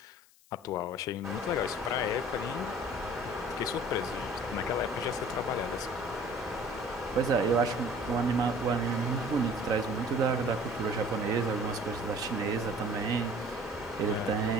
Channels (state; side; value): noise; left; hiss, 28 dB below the sound